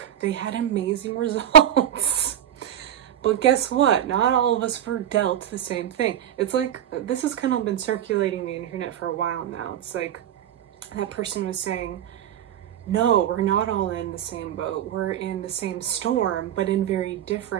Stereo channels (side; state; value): left; quieter; 10.5 dB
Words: they had amazing results. But guess what? Not all of us were dealt the same thing. It's like, this has kind of been circulating the internet for a while now. It's like, that person was saying, no, we're not all in the same boat. We're in the same storm, but in very